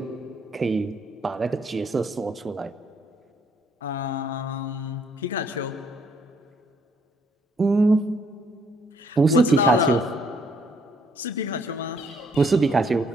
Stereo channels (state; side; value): normal; both; correlation 0.67